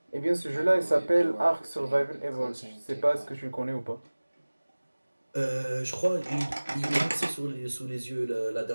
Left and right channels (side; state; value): both; inverted; correlation -1.00